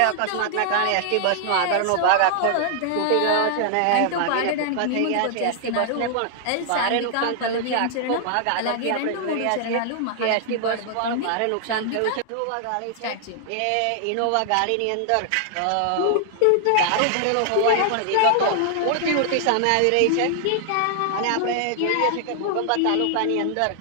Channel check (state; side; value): different; both; correlation 0.00